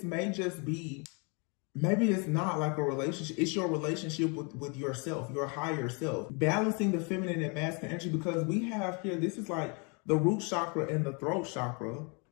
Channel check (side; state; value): right; quieter; 33.6 dB